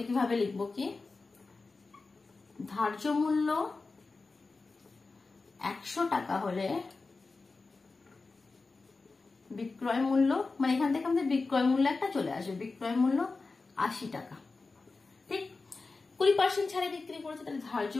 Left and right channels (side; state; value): right; quieter; 3.9 dB